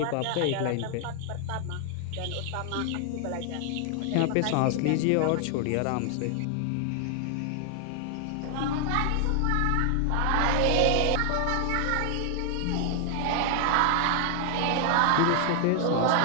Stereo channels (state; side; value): different; both; correlation 0.00